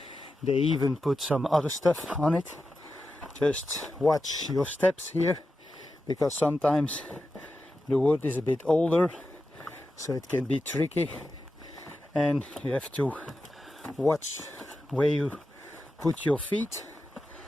They even put some other stuff on it. Just watch your steps here, because sometimes the wood is a bit older, so it can be tricky, and you have to watch where you put your feet.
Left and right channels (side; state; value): both; normal; correlation 0.90